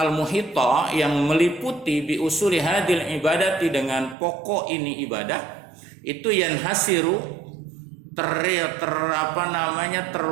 yang meliputi bi usuli hadil ibadati dengan pokok ini ibadah itu yanhasiru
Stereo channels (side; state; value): left; drops out; at 4.2 s